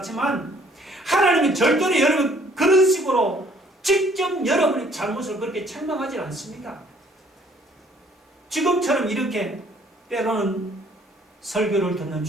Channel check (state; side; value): normal; both; correlation 0.61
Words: 하나님은 절대로 여러분 그런 식으로 직접 여러분의 잘못을 그렇게 책망하지 않습니다. 지금처럼 이렇게 때로는 설교를 듣는